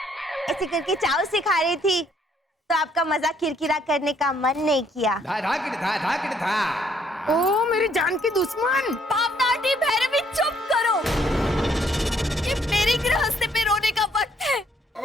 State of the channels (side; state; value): both; normal; correlation 0.67